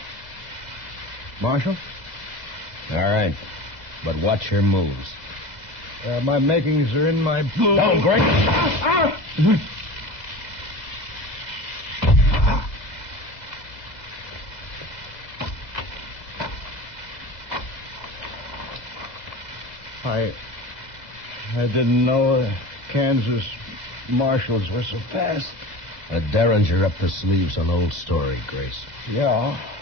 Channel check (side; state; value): left; late; 2.0 ms